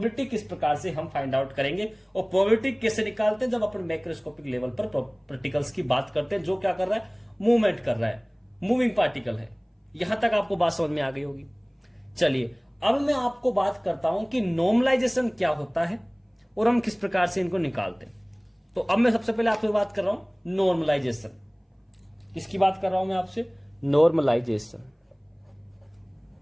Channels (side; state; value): both; identical; correlation 1.00